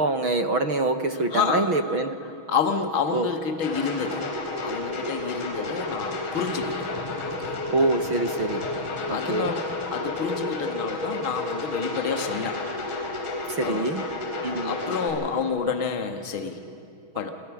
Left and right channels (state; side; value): late; left; 6.3 ms